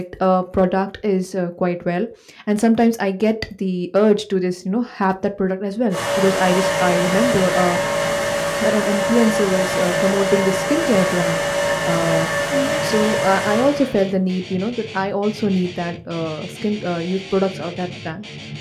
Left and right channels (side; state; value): both; identical; correlation 1.00